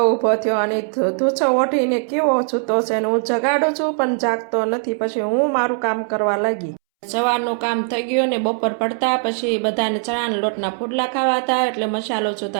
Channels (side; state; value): left; silent; 66 dB below the other